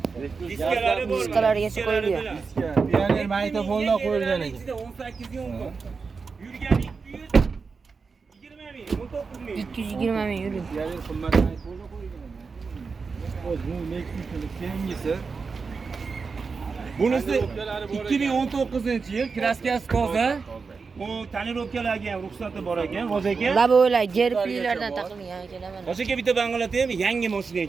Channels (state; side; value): quieter; left; 4.9 dB